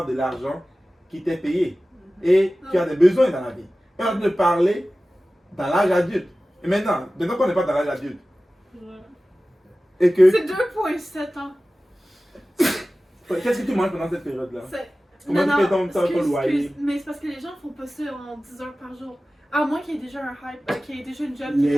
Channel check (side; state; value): both; normal; correlation 0.96